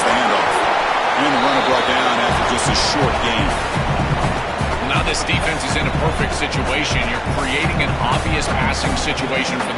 the handoff. And the runner brought down after just a short gain. Now this defense is in a perfect situation. You're creating an obvious passing situation for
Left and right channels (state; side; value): identical; both; correlation 1.00